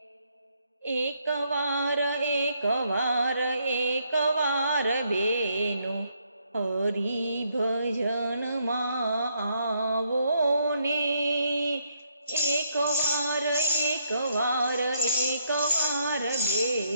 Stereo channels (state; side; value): inverted; both; correlation -0.73